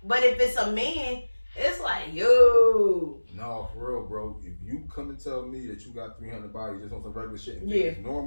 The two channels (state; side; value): inverted; both; correlation -1.00